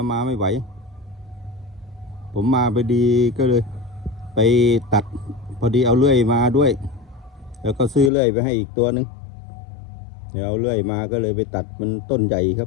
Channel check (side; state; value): right; drops out; at 8.1 s